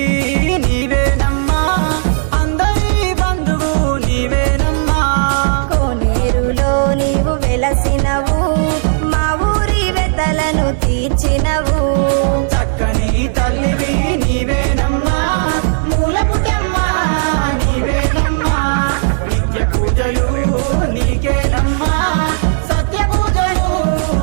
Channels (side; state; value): left; silent; digital silence